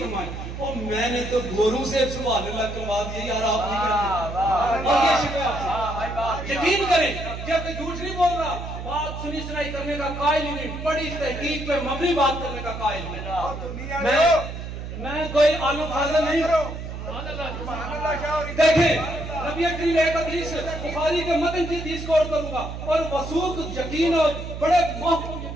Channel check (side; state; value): right; noise; hum, 8 dB below the sound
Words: اور میں نے تو گوروں سے سبحان اللہ کروا دیا یار آپ نہیں کرتے اور یہ شکوہ آپ سے یقین کریں جب کہ جھوٹ نہیں بول رہا بات سنی سنائی کرنے کا قائل ہی نہیں بڑی تحقیق پہ مبنی بات کرنے کا قائل ہوں میں کوئی عالم فاضل نہیں دیکھیں نبی کریم ایک حدیث بخاری کے متن کی حدیث کو عرض کروں گا اور وثوق یقین اور بڑے محکم